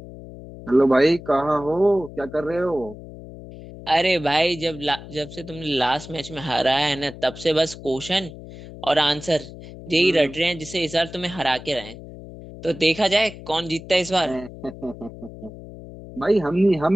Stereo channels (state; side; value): noise; left; hum, 15 dB below the sound